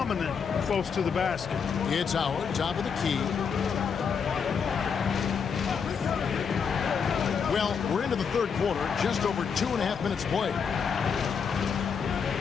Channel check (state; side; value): quieter; right; 6.4 dB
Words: close to the basket. It's Howard, top of the key. Well, we're into the 3rd quarter, just over 2.5 minutes played.